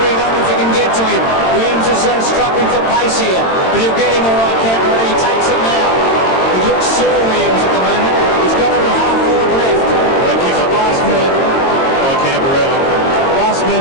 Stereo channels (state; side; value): late; right; 22 ms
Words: space here, but he'll get him all right, Canberra. He takes it now. He looks sore, Williams, at the moment. He's got it at half forward left. They kick the last man by Canberra. Last man